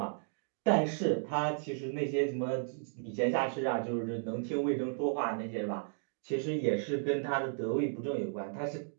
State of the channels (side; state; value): left; silent; digital silence